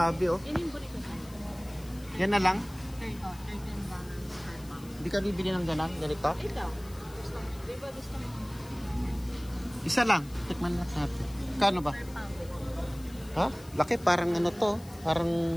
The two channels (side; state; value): left; noise; hiss, 21 dB below the sound